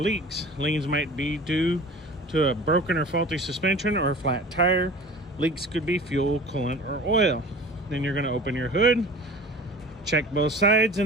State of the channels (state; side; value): normal; both; correlation 0.40